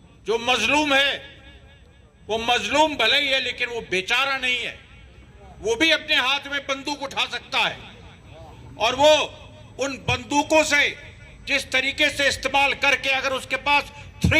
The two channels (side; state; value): both; identical; correlation 1.00